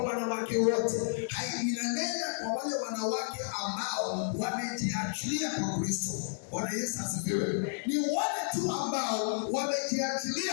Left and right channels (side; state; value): right; silent; digital silence